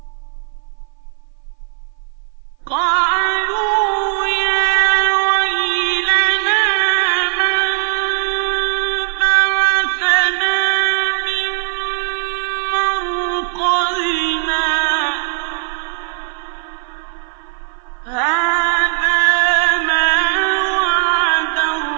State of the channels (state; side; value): silent; left; 56 dB below the other